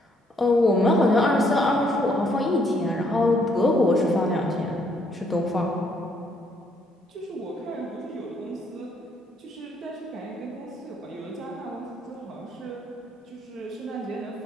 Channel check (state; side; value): normal; both; correlation 0.69